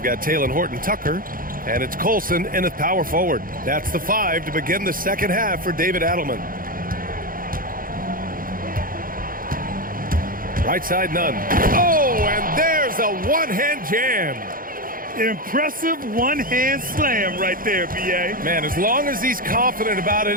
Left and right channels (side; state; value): left; late; 0.41 ms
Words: got Taylor Horton-Tucker, and it's Colson in at power forward. That's the 5 to begin the second half for David Adelman. Right side, Nunn. Oh, and there's a one-hand jam. Impressive one-hand slam right there, B.A. Man, as long as he's confident about